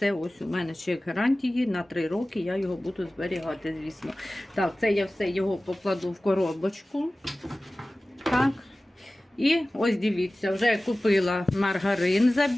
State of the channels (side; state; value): both; normal; correlation 0.97